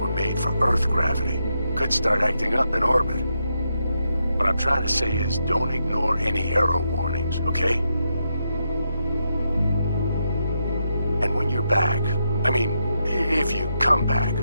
made for Earth gravity. Could start acting up in orbit. What I'm trying to say is, don't ignore any error warnings, okay? And when you're back, I mean, if you come back,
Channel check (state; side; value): inverted; both; correlation -0.83